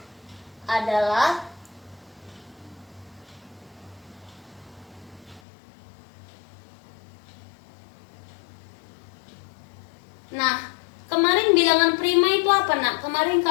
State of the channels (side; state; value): right; drops out; at 5.4 s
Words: adalah kemarin bilangan prima itu apa nak? Kemarin